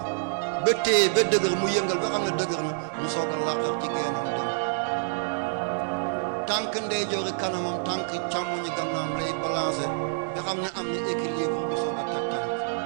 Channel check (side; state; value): left; silent; 60 dB below the other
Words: ba téye ba dëgër mu yëngal ba xam ne dëgër na mu soog a laqar ci genam dem tànk ndeyjoori kanamam tànk càmmoñi gannaam lay balancer nga xam ne am na équilibre bu soog a teg tànk